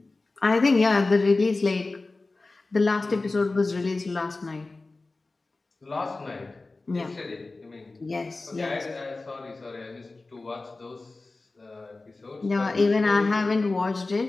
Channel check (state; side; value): quieter; right; 3.4 dB